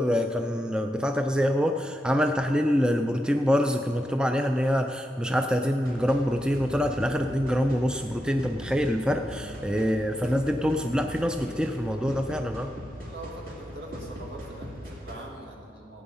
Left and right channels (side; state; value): both; normal; correlation 0.87